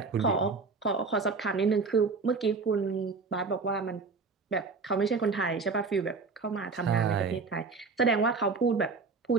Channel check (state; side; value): quieter; left; 4.4 dB